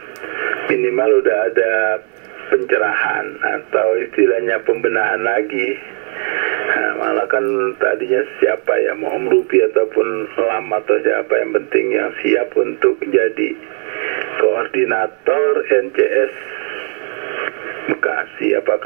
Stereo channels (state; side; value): quieter; left; 38.6 dB